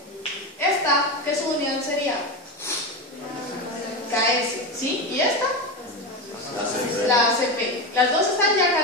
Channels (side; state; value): both; normal; correlation 0.18